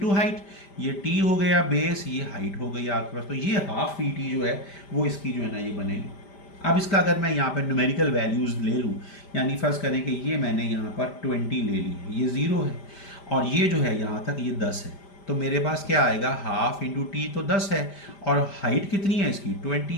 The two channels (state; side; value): late; right; 5.0 ms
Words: height. ये टी हो गया बेस, ये हाइट हो गई आपके पास। तो ये हाफ वी टी जो है वो इसकी जो है ना ये बनेगी। अब इसका अगर मैं यहाँ पर न्यूमेरिकल वैल्यूज़ ले लूँ, यानी फर्ज करें कि ये मैंने यहाँ पर 20 ले ली, ये 0 है, और ये जो है यहाँ तक ये 10 है। तो मेरे पास क्या आएगा? हाफ इंटू टी तो 10 है, और हाइट कितनी है इसकी?